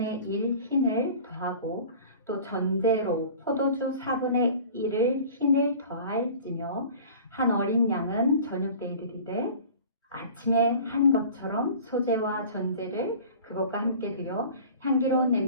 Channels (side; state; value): both; inverted; correlation -0.42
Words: 1 흰을 더하고 또 전제로 포도주 4분의 1을 흰을 더할지며 한 어린 양은 저녁 때에 드리되 아침에 한 것처럼 소제와 전제를 그것과 함께 드려 향기로운